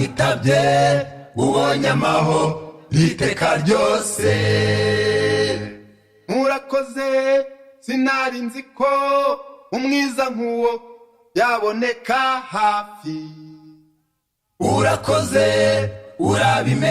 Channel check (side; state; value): both; identical; correlation 1.00